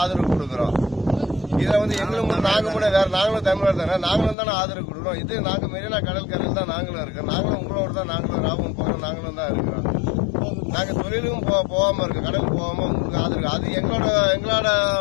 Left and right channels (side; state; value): right; drops out; at 4.4 s